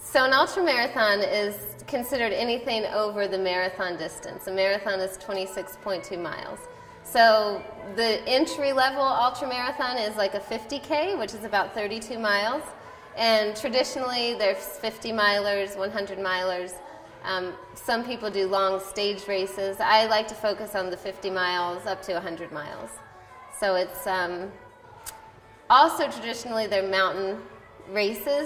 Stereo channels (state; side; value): identical; both; correlation 1.00